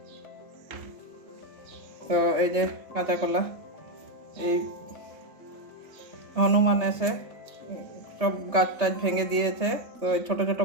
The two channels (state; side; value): late; left; 3.3 ms